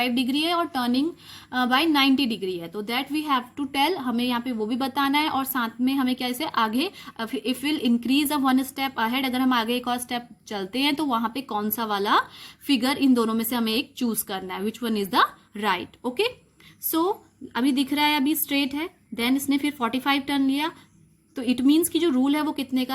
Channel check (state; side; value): identical; both; correlation 1.00